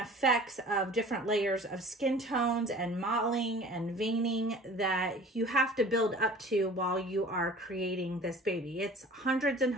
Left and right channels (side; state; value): both; normal; correlation 0.45